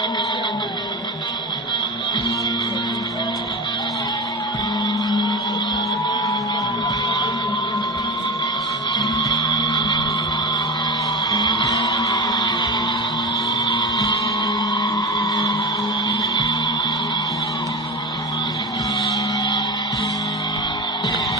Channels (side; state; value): both; normal; correlation 0.23